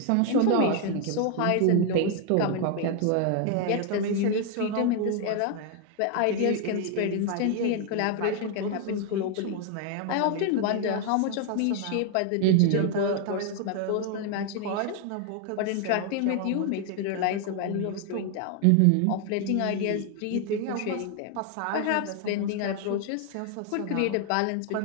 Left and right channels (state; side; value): different; both; correlation 0.00